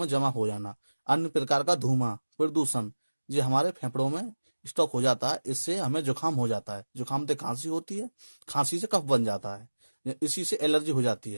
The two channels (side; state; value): both; inverted; correlation -1.00